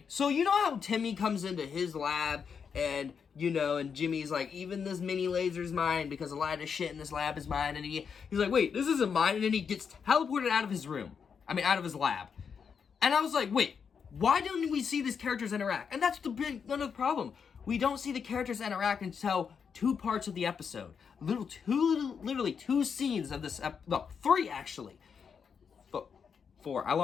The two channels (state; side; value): quieter; right; 6.5 dB